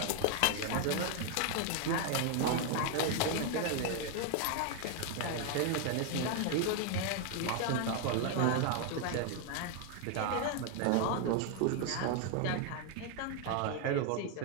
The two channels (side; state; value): both; different; correlation 0.01